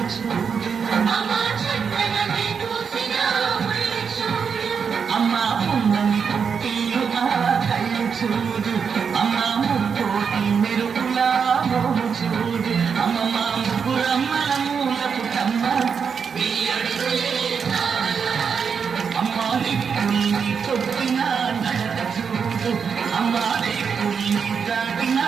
చూడు అమ్మా పున్నమి పుట్టిలు ఆ కళ్ళు చూడు అమ్మా ముక్కోటి మెరుపులా మోము చూడు అమ్మమ్మ ముగ్గురమ్మల మూలపు కమ్మ అమ్మా దిక్కుల్ని కొట్టిన నడక చూడు అమ్మా దిక్కుల్ని దాటిన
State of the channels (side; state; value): left; quieter; 6.3 dB